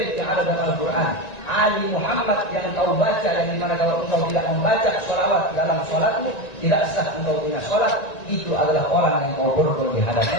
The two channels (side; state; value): right; late; 1.9 ms